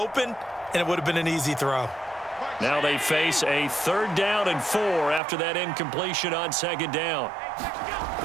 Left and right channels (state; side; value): drops out; left; at 5.2 s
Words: and it would have been an easy throw. Now they face a 3rd down and 4 after that incompletion on 2nd down.